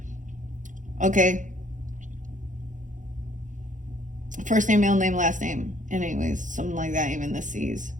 Okay. First name, middle name, last name. Anyways, something like that, even the C's.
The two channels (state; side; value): late; left; 0.37 ms